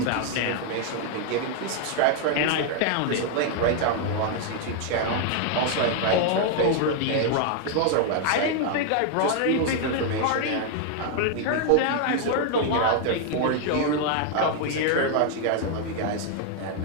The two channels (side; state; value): both; different; correlation 0.00